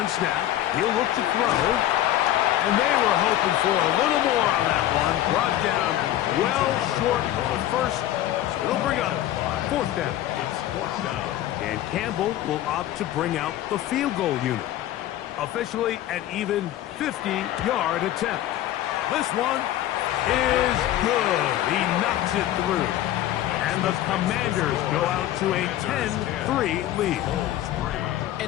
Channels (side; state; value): right; quieter; 13.2 dB